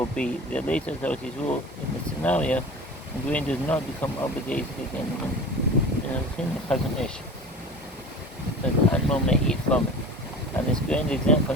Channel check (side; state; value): both; normal; correlation 0.36